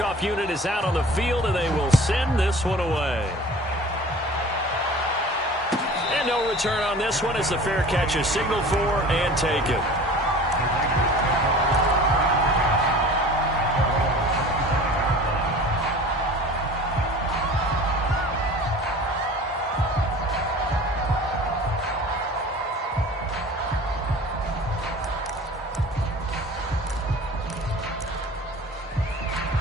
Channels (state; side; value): normal; both; correlation 0.42